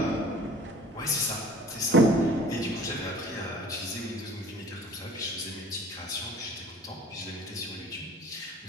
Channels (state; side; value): normal; both; correlation 0.47